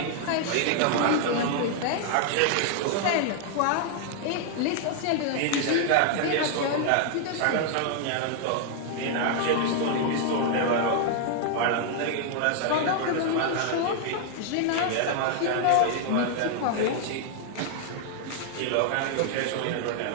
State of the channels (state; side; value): different; both; correlation 0.00